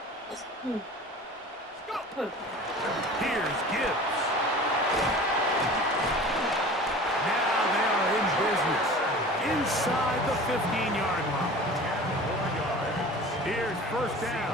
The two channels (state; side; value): normal; both; correlation 0.40